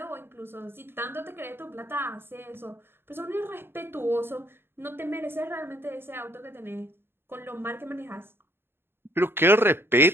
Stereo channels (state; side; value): late; left; 0.11 ms